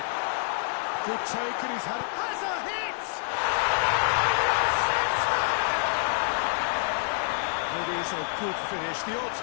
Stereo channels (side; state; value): right; silent; digital silence